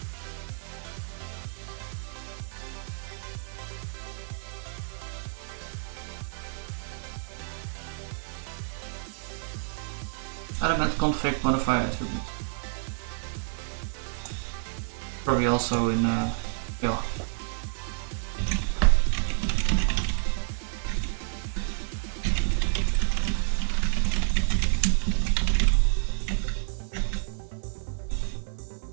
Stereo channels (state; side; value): silent; left; digital silence